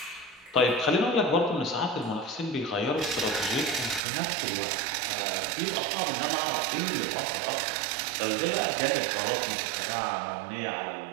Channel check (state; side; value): drops out; left; at 4.0 s